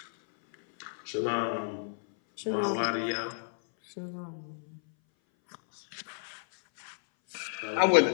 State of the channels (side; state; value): right; silent; 57 dB below the other